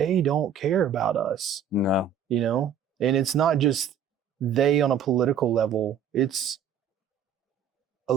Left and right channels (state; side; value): quieter; left; 7.4 dB